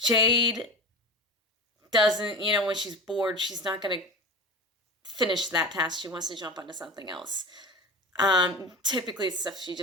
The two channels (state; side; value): normal; both; correlation 0.30